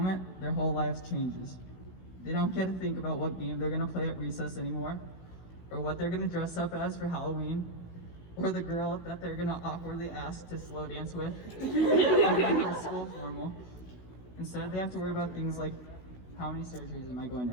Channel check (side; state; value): right; late; 16 ms